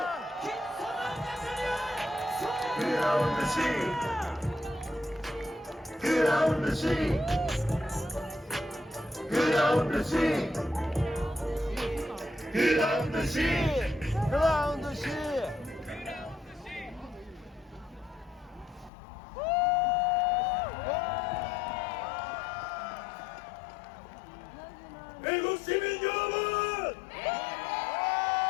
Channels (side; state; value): right; drops out; at 18.9 s